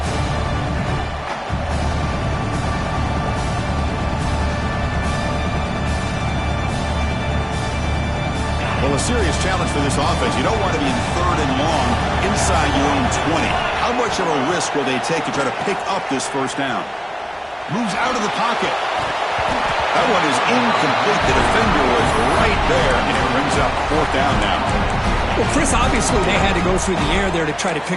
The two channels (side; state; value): both; identical; correlation 1.00